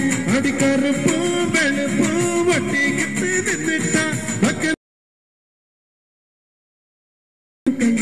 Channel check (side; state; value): both; identical; correlation 1.00